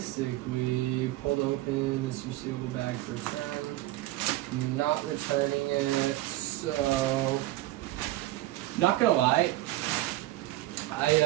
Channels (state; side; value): quieter; left; 16.2 dB